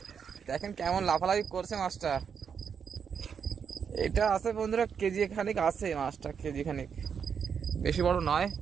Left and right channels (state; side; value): quieter; left; 6.9 dB